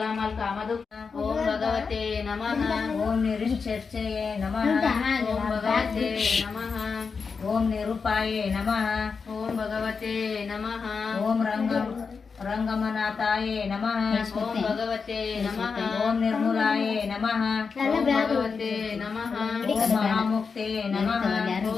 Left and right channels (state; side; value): quieter; right; 5.3 dB